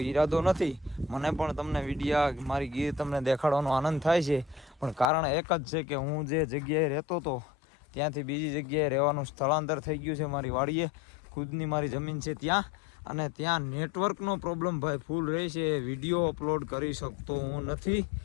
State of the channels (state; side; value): drops out; right; at 5.1 s